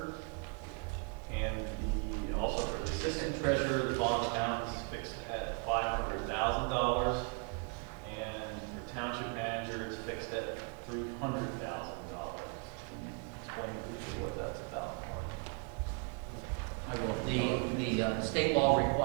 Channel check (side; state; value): left; quieter; 37.0 dB